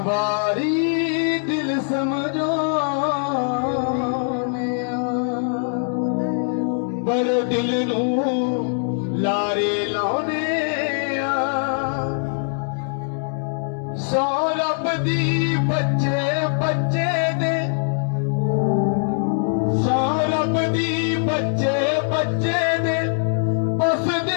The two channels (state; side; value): silent; right; digital silence